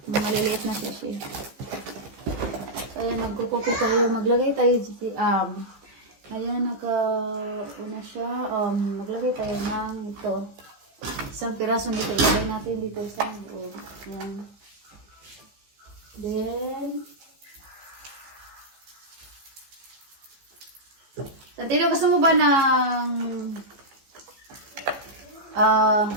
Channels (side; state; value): left; late; 15 ms